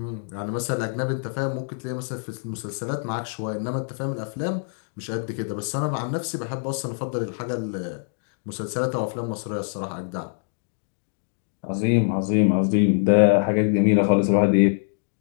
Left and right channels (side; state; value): right; silent; 62 dB below the other